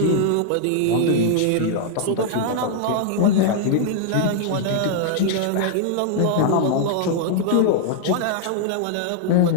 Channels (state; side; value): different; both; correlation -0.01